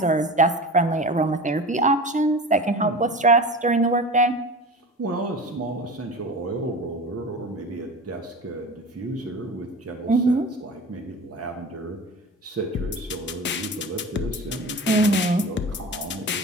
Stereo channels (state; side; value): normal; both; correlation 0.33